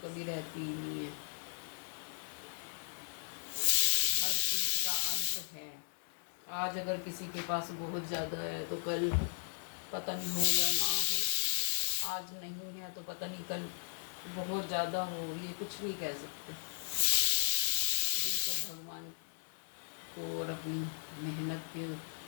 कभी रहती ही नहीं है, हर चीज़ का अंत है। आज अगर किसी के पास बहुत ज़्यादा है तो कल पता नहीं हो या ना हो, आज नहीं है तो पता नहीं कल बहुत ज़्यादा हो, ये कुछ नहीं कह सकते। ये सब भगवान को और अपनी मेहनत के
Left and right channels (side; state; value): right; silent; digital silence